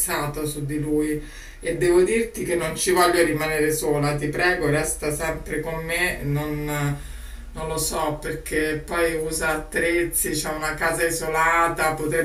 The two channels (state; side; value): identical; both; correlation 1.00